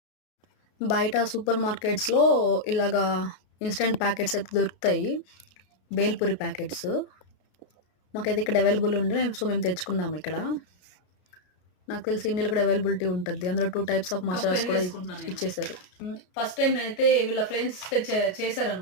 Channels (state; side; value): late; right; 33 ms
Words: బయట సూపర్ మార్కెట్స్‌లో ఇలాగా ఇన్‌స్టంట్ ప్యాకెట్స్ అయితే దొరుకుతాయి. బేల్‌పూరి ప్యాకెట్స్. మాకైతే ఇక్కడ అవైలబుల్ ఉండే సో మేము తెచ్చుకున్నాము ఇక్కడ. నాకు తెలిసి ఇండియాలో కూడా అవైలబిలిటీ ఉంటది. అందులో 2 టైప్స్ ఆఫ్ కప్ మసాలాస్ కూడా పెరుగేసుకుంటున్నా నేను. ఇచ్చేసారు. ఫస్ట్ టైమ్ నేనైతే వీళ్ళ ఫ్రెండ్స్